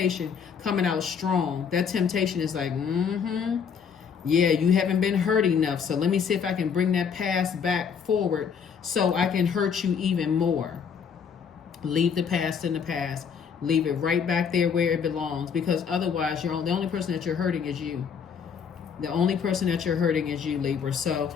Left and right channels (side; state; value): right; quieter; 6.8 dB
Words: coming out strong. That temptation is like, yeah, you haven't been hurt enough. So let me see if I can bring that past back forward so I can hurt you even more. Leave the past in the past. Leave it right back there where it belongs, because otherwise the only person that you're hurting is you. The only person that you're hurting is you, Libra. So